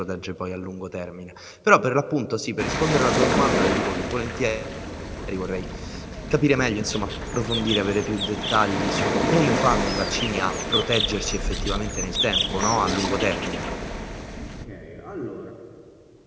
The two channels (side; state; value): both; identical; correlation 1.00